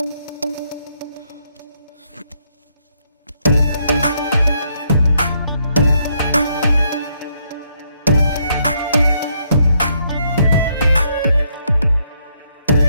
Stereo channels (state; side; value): inverted; both; correlation -0.73